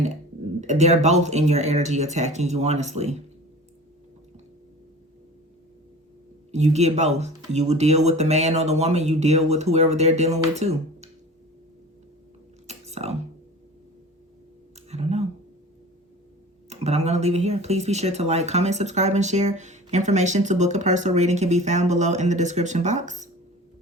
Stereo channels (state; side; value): normal; both; correlation 0.39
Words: they're both in your energy attacking you, honestly. You get both. You will deal with the man or the woman. You deal with whoever they're dealing with too. So, I don't know. But I'm going to leave it here. Please be sure to like, comment, subscribe, and share. Information to book a personal reading can be found below in the description box.